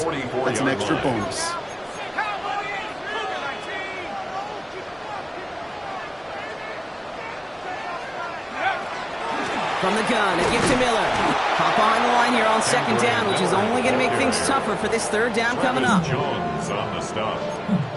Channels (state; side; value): identical; both; correlation 1.00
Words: an extra bonus. From the gun, a gift to Miller. Hop behind the line here on 2nd down, which is only going to make things tougher for this 3rd down coming up. Jones on the stop.